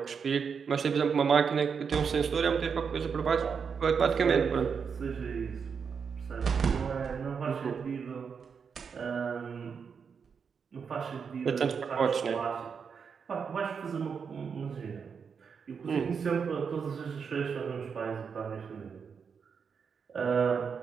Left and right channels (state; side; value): quieter; left; 6.2 dB